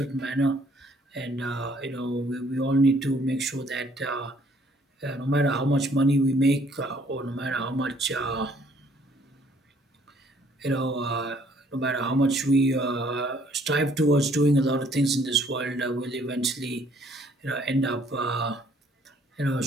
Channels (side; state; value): both; normal; correlation 0.62